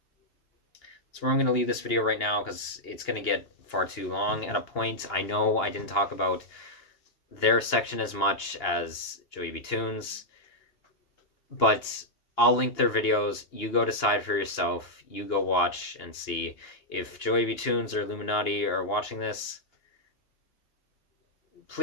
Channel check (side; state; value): right; late; 2.8 ms